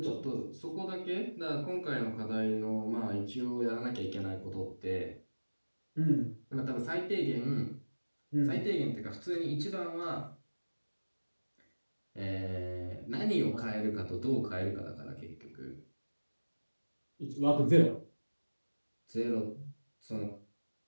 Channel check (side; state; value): both; inverted; correlation -1.00